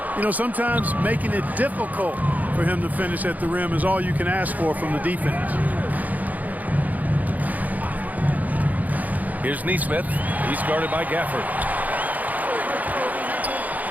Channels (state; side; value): late; left; 0.079 ms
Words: You know, sometimes making it difficult for him to finish at the rim is all you can ask for from the defense. Here's Nesmith. He's guarded by Gafford.